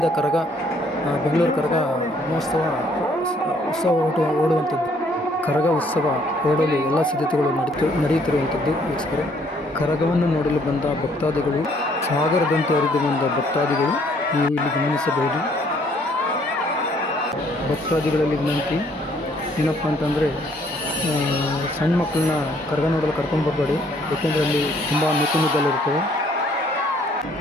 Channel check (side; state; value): both; normal; correlation 0.64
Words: ಕರಗ ಬೆಂಗಳೂರು ಕರಗ ಮಹೋತ್ಸವ ಉತ್ಸವ ಓಡುವಂಥದ್ದು. ಕರಗ ಉತ್ಸವ ಓಡಲು ಎಲ್ಲ ಸಿದ್ಧತೆಗಳು ನಡೆಯುತ್ತಿರುವಂಥದ್ದು ವೀಕ್ಷಕರೇ. ಕರಗವನ್ನು ನೋಡಲು ಬಂದ ಭಕ್ತಾದಿಗಳು, ಸಾಗರದಂತೆ ಹರಿದು ಬಂದ ಭಕ್ತಾದಿಗಳು ನೀವು ಇಲ್ಲಿ ಗಮನಿಸಬಹುದು. ಭಕ್ತಾದಿಗಳಲ್ಲಿ ವಿನಂತಿ ಏನಪ್ಪ ಅಂತಂದರೆ, ಸಣ್ಣ ಮಕ್ಕಳನ್ನ ಕರಗ ನೋಡಲು ಕರ್ಕೊಂಡು ಬರಬೇಡಿ, ಏಕೆಂದರೆ ಅಲ್ಲಿ ತುಂಬ ಮಿಕ್ಕಲಿರುತ್ತವೆ.